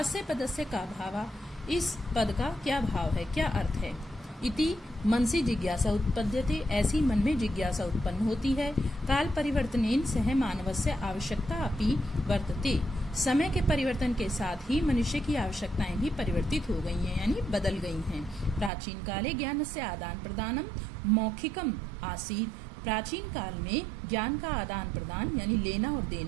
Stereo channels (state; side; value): drops out; left; at 18.7 s